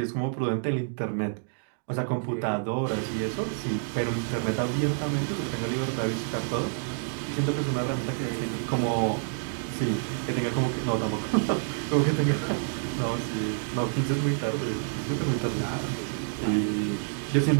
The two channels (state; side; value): silent; left; digital silence